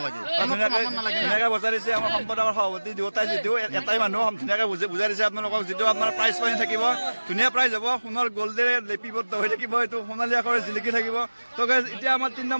ধুনীয়াকৈ বজাই দিছে আমাৰ সম্পাদকৰ সভাপতি দুয়োটাই। যিটো এটাই মানুহ ধুনীয়াকৈ বুজাই দিছে আপোনালোকক, যিটো আপোনাৰ প্ৰাইজ পানী থাকিব, ধুনীয়া প্ৰাইজ হ'ব, সোণৰ গল্ডেৰে লিপিবদ্ধ হৈ থাকিব, এইটো সোণালী আখৰে জিলিকি থাকিব। ত' গাইজ এতিয়া আমাৰ 3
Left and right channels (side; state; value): both; inverted; correlation -1.00